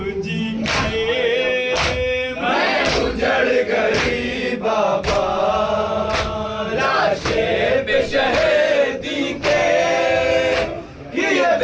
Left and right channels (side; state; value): both; identical; correlation 1.00